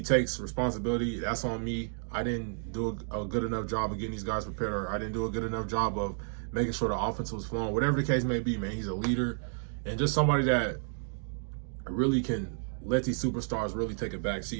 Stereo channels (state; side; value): silent; left; 57 dB below the other